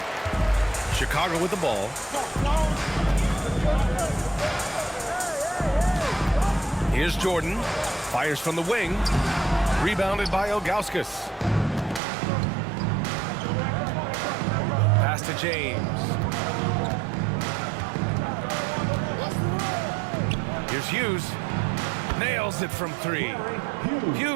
Chicago with the ball. Here's Jordan. Fires from the wing. Rebounded by Ilgauskas. Pass to James. Here's Hughes. Nails it from 3.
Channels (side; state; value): left; drops out; at 12.0 s